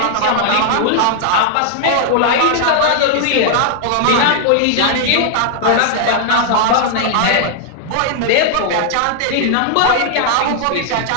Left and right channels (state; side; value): different; both; correlation -0.01